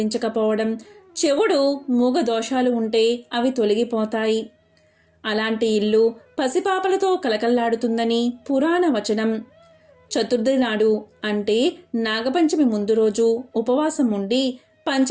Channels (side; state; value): both; identical; correlation 1.00